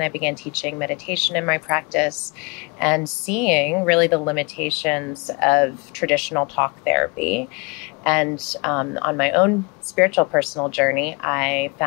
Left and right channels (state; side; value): quieter; right; 30.2 dB